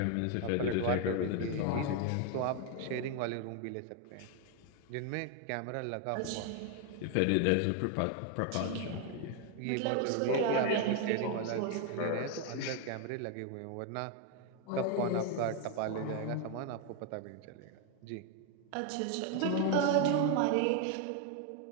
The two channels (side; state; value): both; different; correlation 0.00